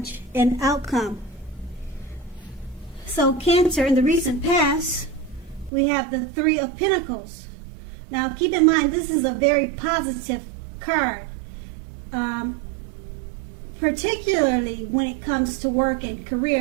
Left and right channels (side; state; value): left; drops out; at 5.7 s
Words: and outcome. So Cancer, in the recent past, we have the Three of Pentacles. Now keep in mind, this is a very positive card. Particularly when it comes to work and